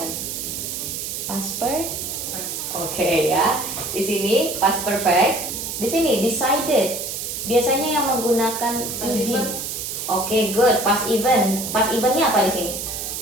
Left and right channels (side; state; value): right; noise; hiss, 5 dB below the sound